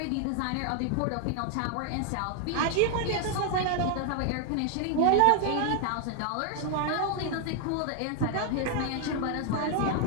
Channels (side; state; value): both; different; correlation 0.00